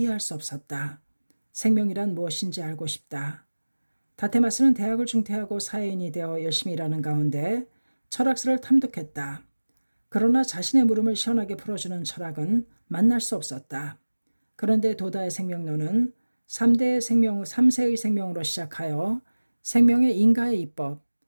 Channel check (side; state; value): both; inverted; correlation -1.00